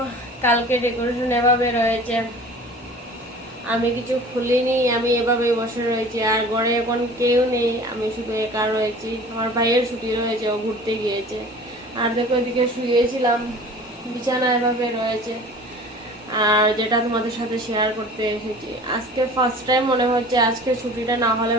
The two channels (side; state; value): both; normal; correlation 0.43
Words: কালকে ডেকোরেশন এভাবে রয়েছে। আমি কিছু খুলিনি, আমি এভাবে বসে রয়েছি। আর ঘরে এখন কেউ নেই, আমি শুধু একা রয়েছি। আমার ভাইয়ের ছুটি রয়েছে, ও ঘুরতে গিয়েছে। আর দেখো এদিকে শুয়েছিলাম, বিছানা এভাবে রয়েছে। আর যেটা তোমাদের সাথে শেয়ার করতে এসেছি, আজকে ফার্স্ট টাইম মনে হচ্ছে আজকে ছুটিটা না হলে